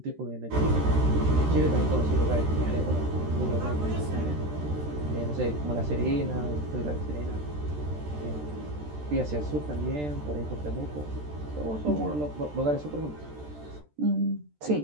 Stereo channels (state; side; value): late; left; 13 ms